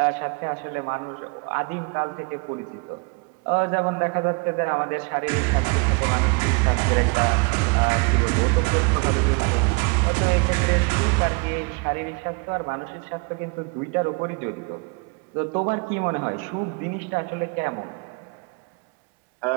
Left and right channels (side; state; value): left; quieter; 31.5 dB